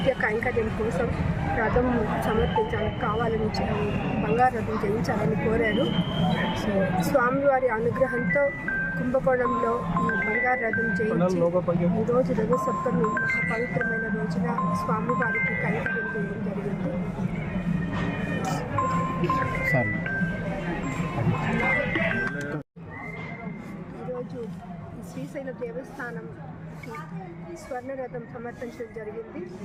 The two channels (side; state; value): both; identical; correlation 1.00